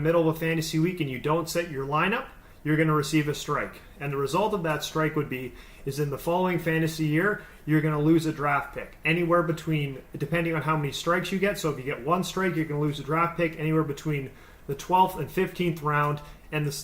of a fantasy week and you don't set your lineup, you're going to receive a strike. And the result of that strike is in the following fantasy year, you're going to lose a draft pick. Anywhere between, depending on how many strikes you get, so if you get one strike, you're going to lose a draft pick anywhere between the 12th and 15th round. And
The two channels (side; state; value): both; identical; correlation 1.00